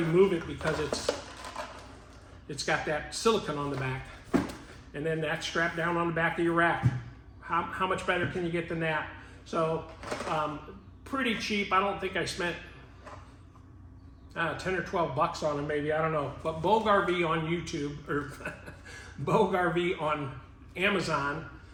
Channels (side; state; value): both; identical; correlation 1.00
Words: move it because it's got that silicone on the back, and then that's strapped down on the back of your rack. How much better can you get than that? So pretty cheap. I don't think I spent 10 or 12 bucks on them, maybe, I don't know. But Bogue RV on YouTube, or Bogue RV on Amazon,